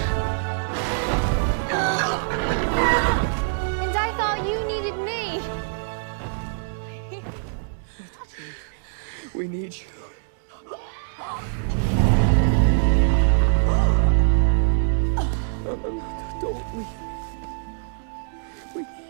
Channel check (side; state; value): left; silent; digital silence